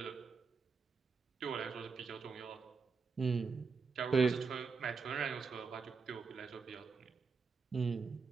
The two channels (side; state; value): left; quieter; 4.9 dB